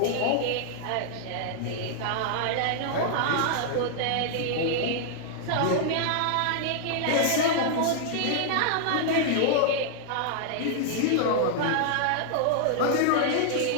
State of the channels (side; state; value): both; different; correlation -0.01